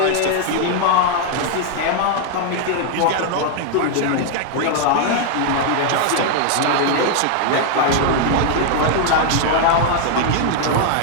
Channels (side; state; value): both; different; correlation 0.00